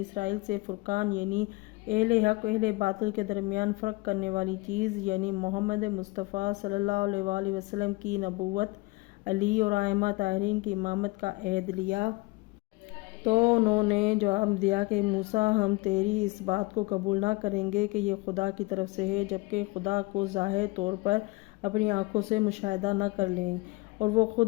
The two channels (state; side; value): quieter; right; 23.2 dB